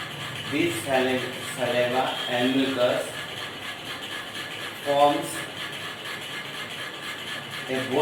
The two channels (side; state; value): both; identical; correlation 1.00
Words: This saliva and mucus forms a